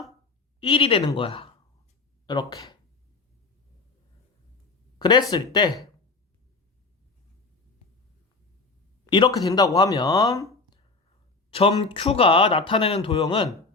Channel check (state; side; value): quieter; right; 3.9 dB